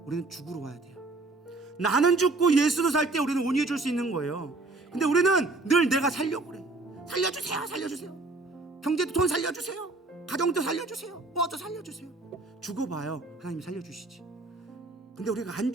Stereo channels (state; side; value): quieter; left; 3.2 dB